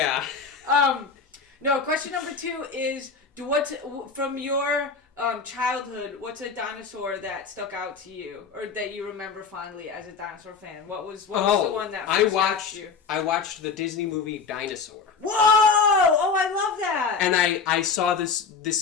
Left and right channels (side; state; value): right; quieter; 5.3 dB